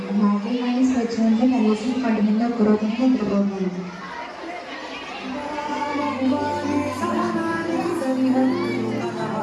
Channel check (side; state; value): both; identical; correlation 1.00